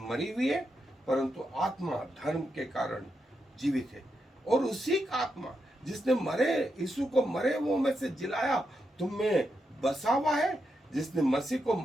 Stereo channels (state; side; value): normal; both; correlation 0.84